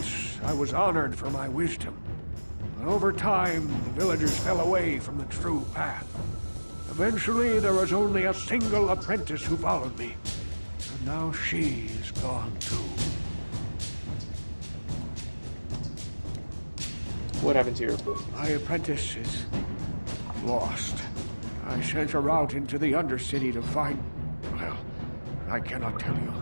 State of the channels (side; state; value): both; inverted; correlation -1.00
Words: I was honored for my wisdom, but over time the villagers fell away from the true path. Eventually there was only a single apprentice who followed me, and now she is gone too. What happened to your... My apprentice is lost. I sent her out into the Undercity to find... Well, I cannot tell you.